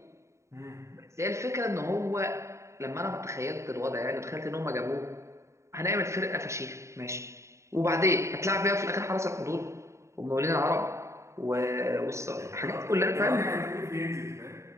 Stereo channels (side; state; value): left; late; 0.14 ms